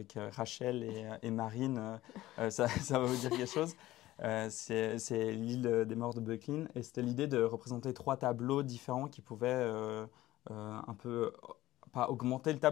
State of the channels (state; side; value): quieter; right; 16.0 dB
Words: Rachel et Marine, ça va vous dire quelque chose. C'est l'île des morts de Böcklin. Et c'était l'idée de représenter 3 tableaux différents qui pouvaient un peu, pas augmenter le